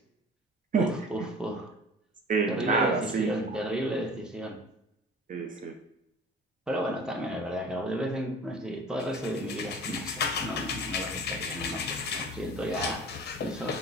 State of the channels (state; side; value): normal; both; correlation 0.41